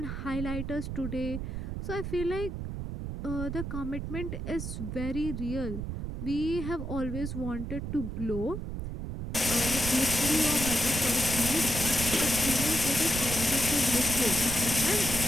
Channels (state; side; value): noise; right; rumble, 5 dB below the sound